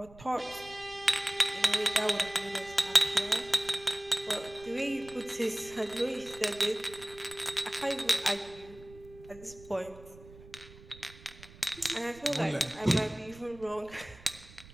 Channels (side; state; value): right; noise; rumble, 20 dB below the sound